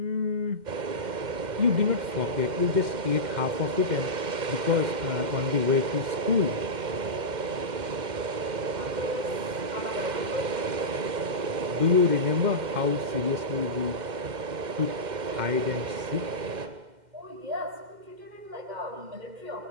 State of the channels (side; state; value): left; late; 2.1 ms